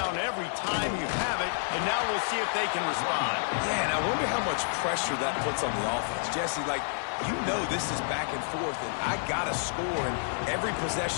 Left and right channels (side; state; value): right; silent; digital silence